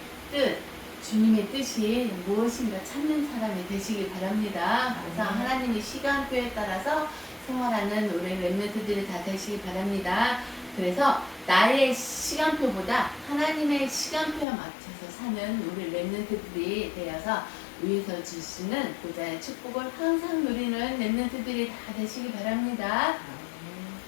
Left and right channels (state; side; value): drops out; right; at 14.5 s